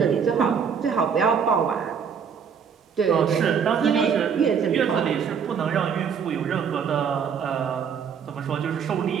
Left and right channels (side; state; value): left; quieter; 6.9 dB